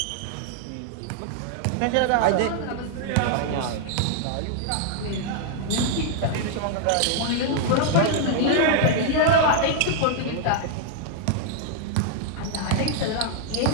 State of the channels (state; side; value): different; both; correlation 0.00